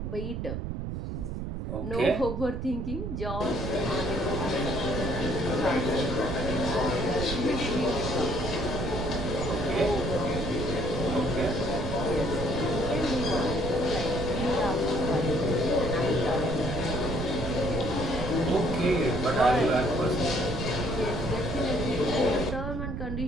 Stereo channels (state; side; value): noise; right; rumble, 4 dB below the sound